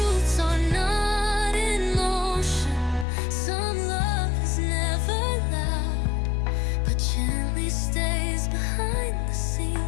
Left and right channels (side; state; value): right; drops out; at 3.1 s